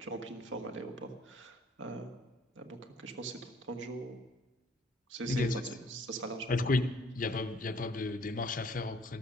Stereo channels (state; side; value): normal; both; correlation 0.59